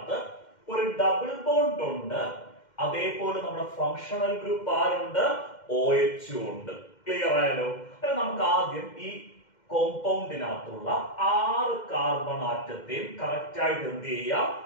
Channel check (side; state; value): right; late; 2.1 ms